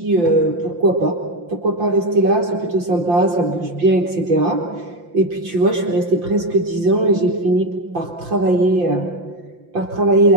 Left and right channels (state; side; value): late; left; 5.8 ms